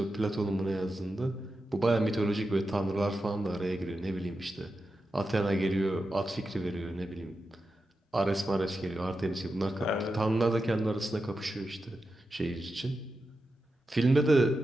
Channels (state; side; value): normal; both; correlation 0.90